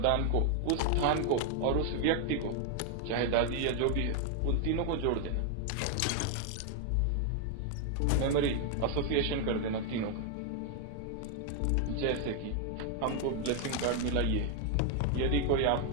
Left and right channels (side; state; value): both; different; correlation 0.00